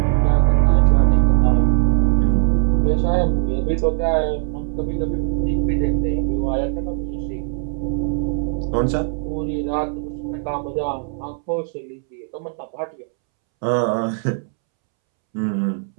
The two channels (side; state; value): left; silent; 66 dB below the other